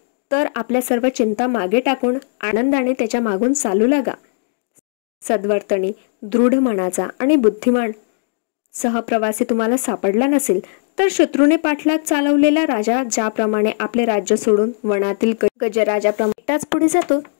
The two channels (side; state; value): right; silent; digital silence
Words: तर आपल्या सर्व चिंता मागे टाकून आनंदाने त्याच्या मागून चालू लागा. सद्वर्तनी, दृढ मनाचा आणि बुद्धिमान सहप्रवासी तुम्हाला सापडला नसेल तर शत्रूने पाठलाग चालवलेला राजा ज्याप्रमाणे आपले राज्य सोडून वनातील गजराजाप्रमाणे एकटाच पुढे जातो,